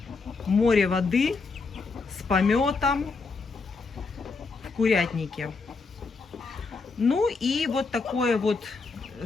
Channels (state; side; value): quieter; right; 4.3 dB